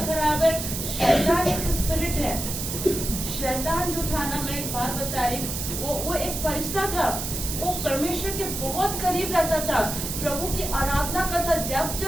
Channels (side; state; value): right; noise; hiss, 5 dB below the sound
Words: खराब है। शैतान एक स्पिरिट है। शैतान जो था ना, मैं एक बात बता रही, वो एक फरिश्ता था। वो परमेश्वर परमेश्वर के बहुत करीब रहता था, प्रभु की आराधना करता। जब